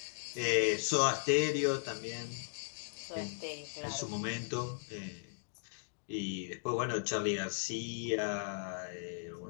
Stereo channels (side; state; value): right; silent; digital silence